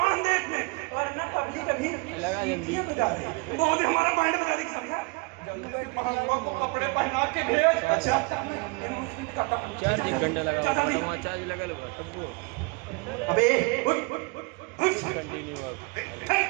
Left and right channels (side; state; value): left; quieter; 27.3 dB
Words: दे इसमें। और ना कभी कभी सीटियां बजा रहे, बहुत हमारा बैंड बजा दे समझा। जल्दी से महंगा को कपड़े पहना के भेज। अच्छा चार्ज घंटा लगा चाचा जी। वहाँ चार्ज लगा लो सबको अबे उठ उठ उठ continue